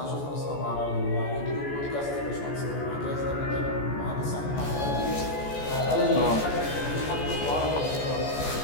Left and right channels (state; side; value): late; right; 14 ms